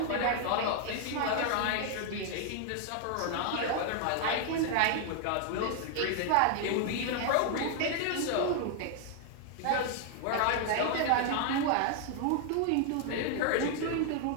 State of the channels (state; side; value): different; both; correlation 0.00